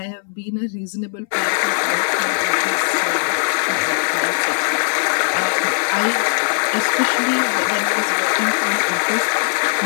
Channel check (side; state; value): right; silent; 63 dB below the other